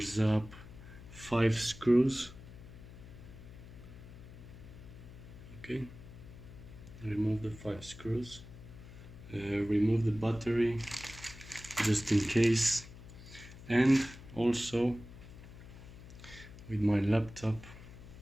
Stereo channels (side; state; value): left; noise; hum, 16 dB below the sound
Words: up 5 screws. Okay, remove the 5 screws. Remove the battery just in case, and also with my laptop